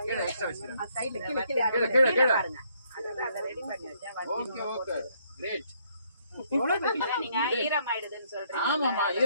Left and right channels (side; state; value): both; inverted; correlation -0.69